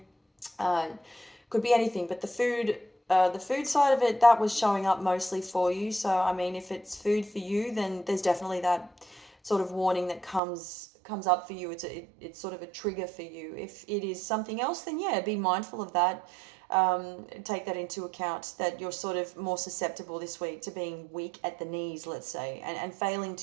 Uh, could be anything, but the food side of it, that was showing up mostly for you. So I mean, if it's food for you, then there's definitely that sort of warning that comes up for you. It's sort of a trigger for you. If it is something else, then yeah, be mindful of that. Take that into account, that you're sort of more susceptible this week to being weak at the knees, let's say, and failing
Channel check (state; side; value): drops out; left; at 10.4 s